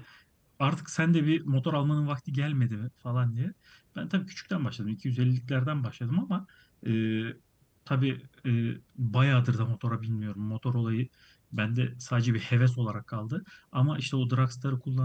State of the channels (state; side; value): identical; both; correlation 1.00